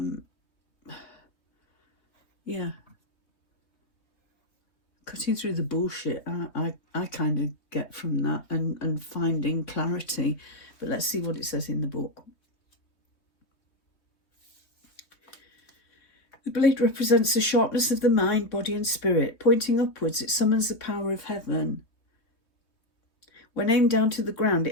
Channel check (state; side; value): late; right; 3.2 ms